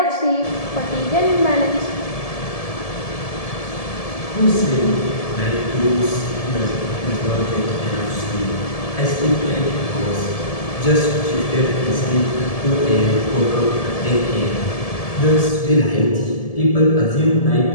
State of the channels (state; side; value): late; right; 1.7 ms